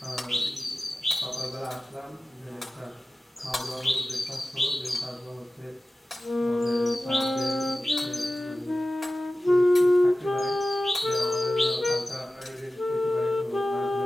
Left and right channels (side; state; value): both; normal; correlation 0.95